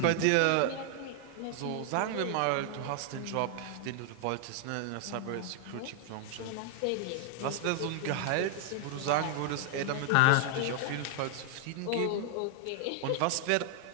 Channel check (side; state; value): both; different; correlation 0.00